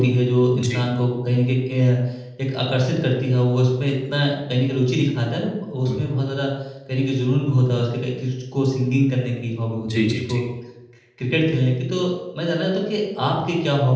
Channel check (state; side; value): identical; both; correlation 1.00